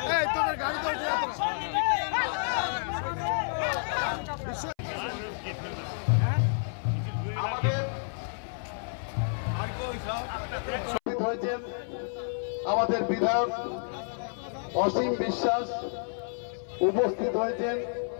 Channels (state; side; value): silent; right; 58 dB below the other